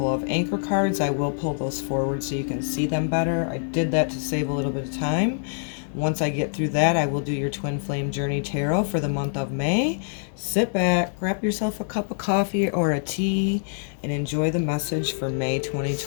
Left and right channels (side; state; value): right; silent; digital silence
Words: of anchor cards. I will pull those forward so you can see them better. I did that to save a little bit of time. Once I get through that, I will do your Twin Flame Journey Tarot for the month of May. Sit back, grab yourself a cup of coffee or a tea, and enjoy the message for May